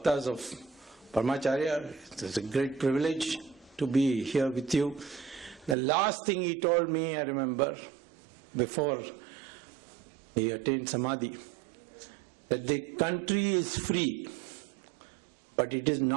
of Paramacharya. It's a great privilege to be here with you. The last thing he told me, I remember, before he attained Samadhi, that the country is free, but it is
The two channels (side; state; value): left; drops out; at 5.8 s